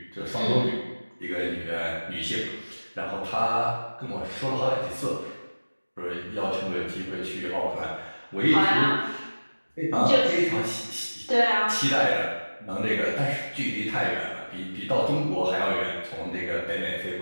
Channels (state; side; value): inverted; both; correlation -1.00